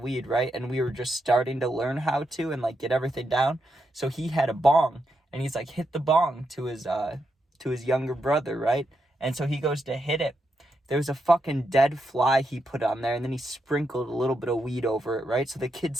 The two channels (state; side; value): normal; both; correlation 0.83